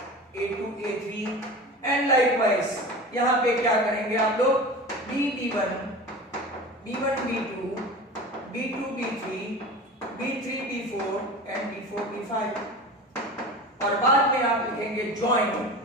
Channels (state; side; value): normal; both; correlation 0.33